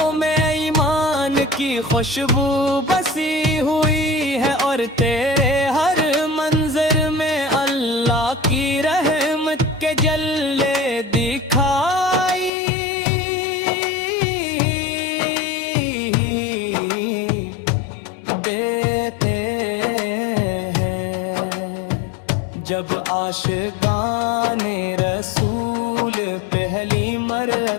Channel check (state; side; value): drops out; right; at 12.5 s